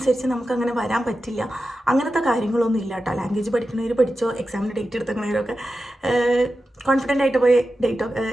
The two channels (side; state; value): both; normal; correlation 0.92